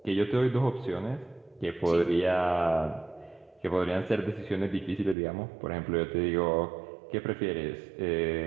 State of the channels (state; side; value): drops out; left; at 5.2 s